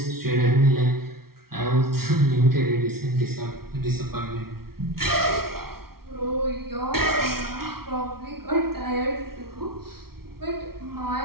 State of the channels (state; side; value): late; left; 0.94 ms